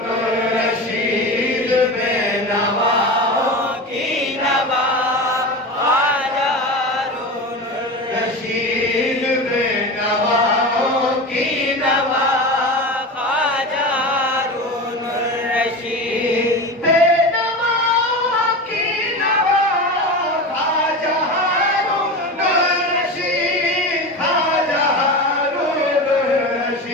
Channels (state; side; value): normal; both; correlation 0.26